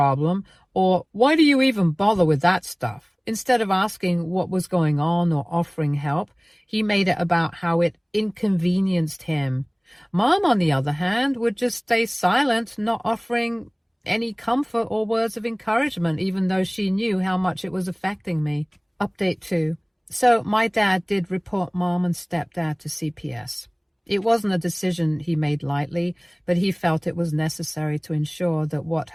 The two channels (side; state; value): both; identical; correlation 1.00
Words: or "Why do you even bother with that stuff?" Instead of asking what was going on or offering help, he made it about how it inconvenienced him. Mom, on the other hand, would just stay silent, not offering any comfort or words of encouragement, even though she knew how much it was affecting me. Update 2. So my dad did report Mom and Stepdad to CPS. It wasn't a decision he made lightly, but he felt it was necessary to ensure that what